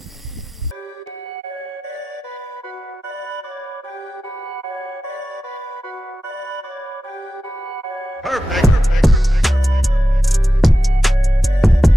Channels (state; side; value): normal; both; correlation 0.92